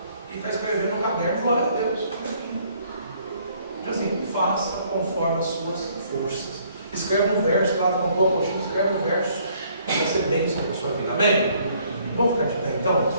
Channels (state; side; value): inverted; both; correlation -0.63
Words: e está escrevendo no caderno, glória a Deus. Então assim, faça conforme as suas forças. Escreve um verso, lá com uma apostila, escreve um verso, vai ser bênção para a sua vida. Amém? Vamos ficar de pé então?